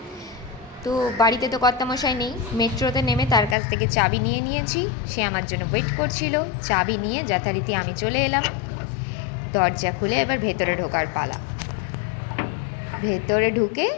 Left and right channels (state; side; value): drops out; right; at 3.6 s